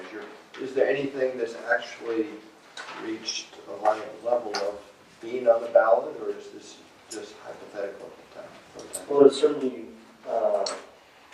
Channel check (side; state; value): both; identical; correlation 1.00